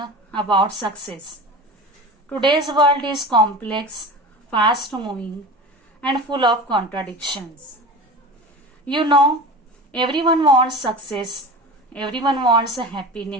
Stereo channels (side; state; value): both; normal; correlation 0.32